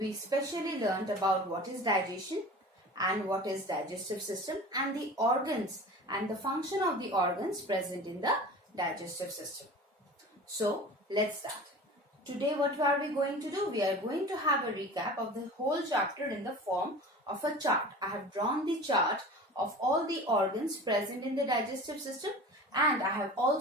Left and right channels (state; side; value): normal; both; correlation 0.37